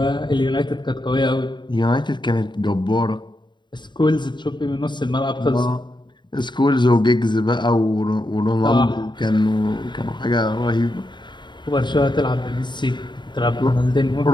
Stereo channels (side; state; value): right; late; 0.22 ms